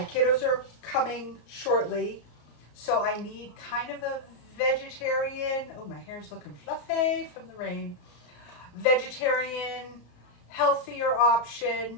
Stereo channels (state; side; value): late; right; 34 ms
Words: kiddos are coming shortly, so I need kind of a vegetarian, oh my hair's looking fluffy from the rain, vegetarian, healthier